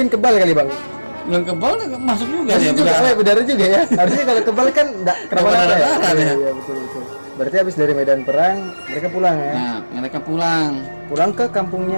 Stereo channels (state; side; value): inverted; both; correlation -1.00